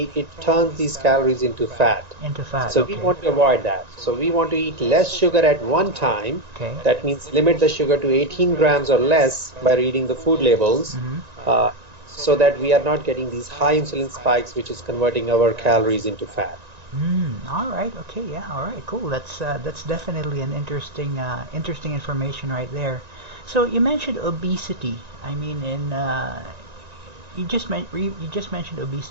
it turns these calories into fat. Into fat. So okay. we want to avoid that. So we want to eat less sugar at one time. Okay. That means limit the sugar to 18 grams or less by reading the food labels, so that we are not getting these high insulin spikes, which is converting our calories into fat. All right. Okay. Yeah. All right. Cool. That's definitely an interesting information right there. So you mentioned obesity. I mean, you just mentioned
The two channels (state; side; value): late; left; 1.9 ms